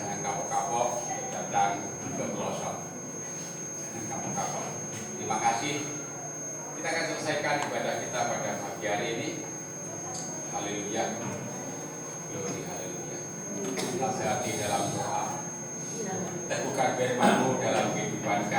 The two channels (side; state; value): both; identical; correlation 1.00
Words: kapok-kapok datang ke pelosok. Jangan kapok-kapok. Terima kasih. Kita akan selesaikan ibadah kita pada pagi hari ini. Haleluya. Glory haleluya. Kita hati dalam doa. Teguhkan firman-Mu dalam kehidupan